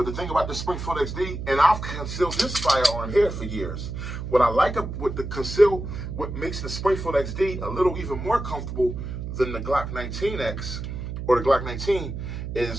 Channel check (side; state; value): right; noise; hum, 6 dB below the sound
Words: the thing about the Springfield XD, and I've concealed this firearm here for years. What I like with the Conceal, what makes the Springfield XD a little even more comfortable than the Glock 19X or the Glock 19